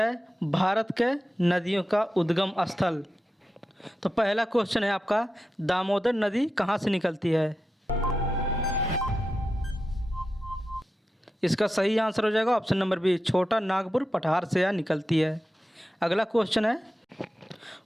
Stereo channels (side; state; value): both; normal; correlation 0.91